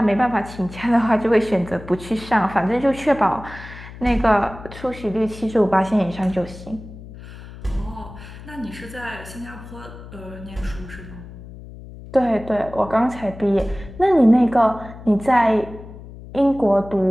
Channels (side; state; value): left; noise; hum, 15 dB below the sound